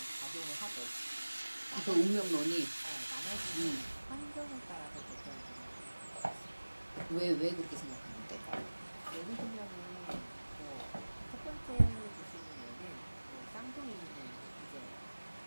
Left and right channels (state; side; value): inverted; both; correlation -1.00